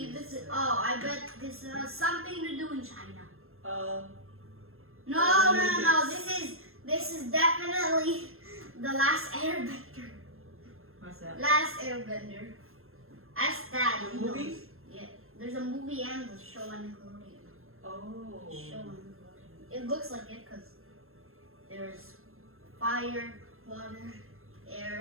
this is, oh, I bet this has something to do in China. No, this is definitely the last airbender. What's that? Last airbender. Ask Dad. The he knows. movie? Yeah, there's a movie and a show on Nickelodeon. Oh. Show on Nickelodeon. It looks like it because there's fire, water,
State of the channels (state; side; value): late; left; 0.61 ms